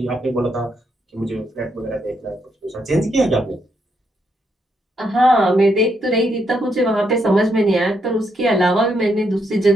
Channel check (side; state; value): both; normal; correlation 0.78